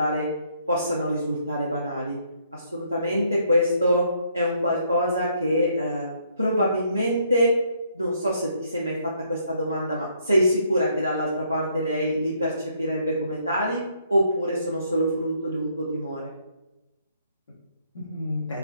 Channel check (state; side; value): inverted; both; correlation -0.69